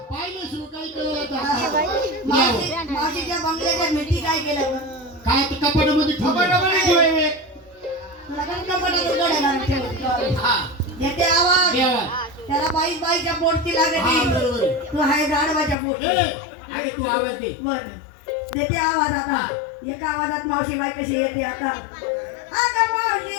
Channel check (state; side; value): drops out; right; at 15.8 s